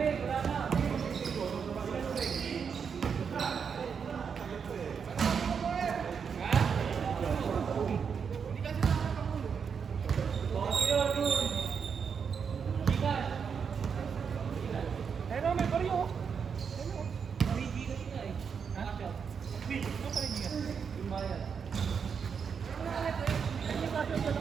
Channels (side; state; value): left; quieter; 6.5 dB